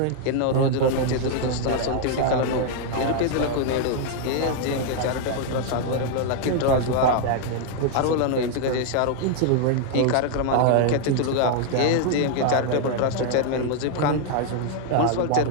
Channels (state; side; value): different; both; correlation 0.00